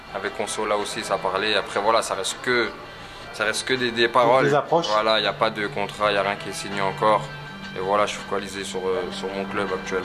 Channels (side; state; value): both; identical; correlation 1.00